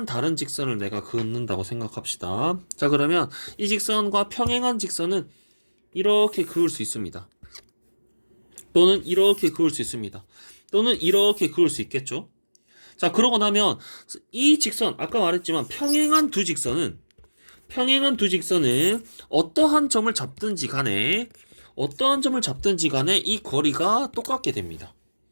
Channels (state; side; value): inverted; both; correlation -1.00